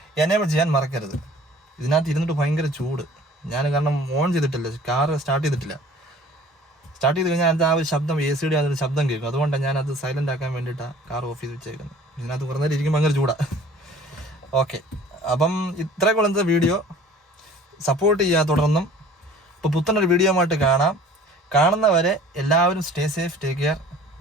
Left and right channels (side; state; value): both; normal; correlation 0.49